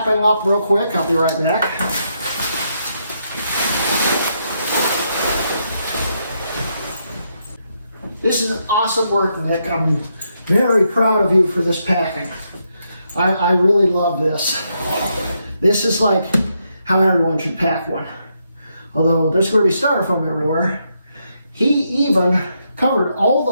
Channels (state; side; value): inverted; both; correlation -0.79